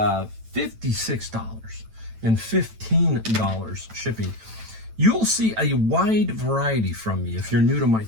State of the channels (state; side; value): late; left; 9.0 ms